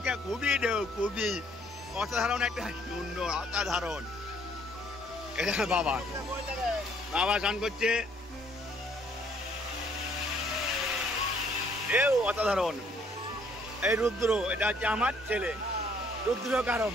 খুবই ঢেউ, খুবই অসাধারণ একটা সুন্দর, অসাধারণ। এটা বাবা বাবা স্নান করছে, ঢেউ অসাধারণ। এই রুদ্র, এটা হচ্ছে আমার ছেলে রুদ্র। কারণ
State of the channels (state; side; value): normal; both; correlation 0.64